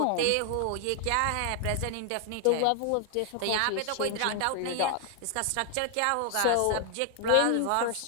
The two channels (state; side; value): different; both; correlation 0.00